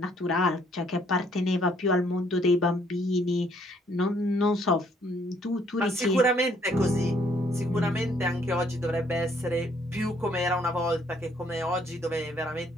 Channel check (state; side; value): normal; both; correlation 0.65